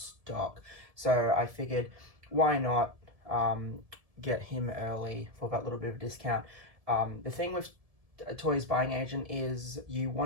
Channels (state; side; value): late; left; 1.7 ms